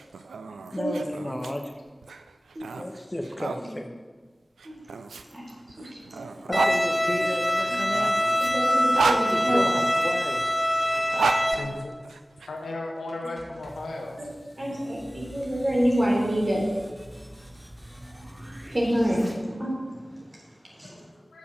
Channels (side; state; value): both; normal; correlation 0.97